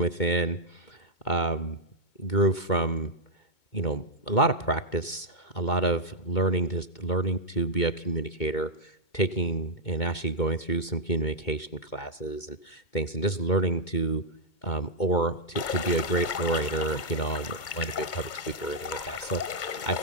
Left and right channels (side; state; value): right; late; 2.2 ms